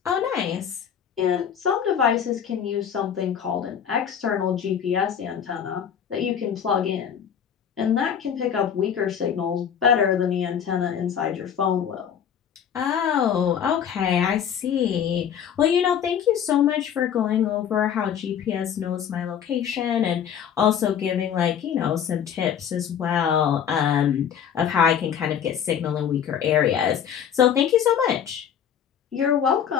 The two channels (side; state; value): right; quieter; 8.5 dB